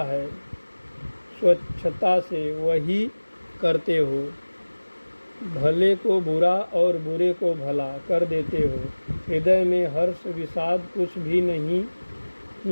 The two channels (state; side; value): inverted; both; correlation -1.00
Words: है स्वच्छता से वही करते हो। भले को बुरा और बुरे को भला कर देते हो। हृदय में हर्ष विषाद कुछ भी नहीं